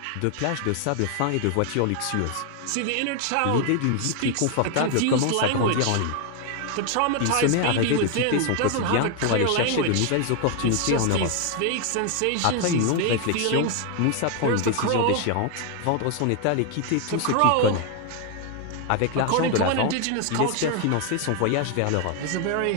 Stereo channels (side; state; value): both; different; correlation 0.01